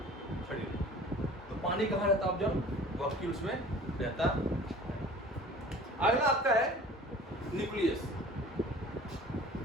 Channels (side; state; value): both; normal; correlation 0.45